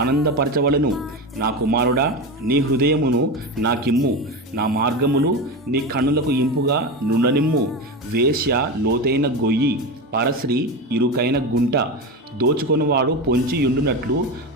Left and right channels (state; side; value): normal; both; correlation 0.21